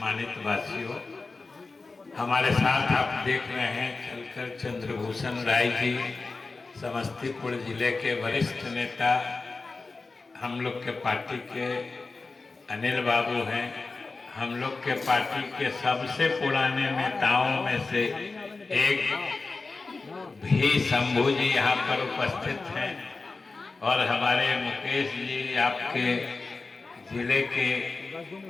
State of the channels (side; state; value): right; quieter; 3.9 dB